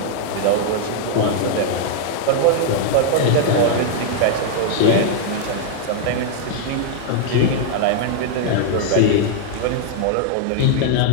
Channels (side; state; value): both; different; correlation 0.00